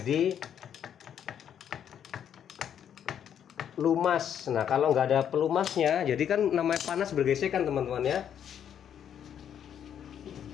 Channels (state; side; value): quieter; right; 9.1 dB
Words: lumas. Nah, kalau nggak ada pelumasnya jadi kan namanya panas bergesekan teman-teman ya.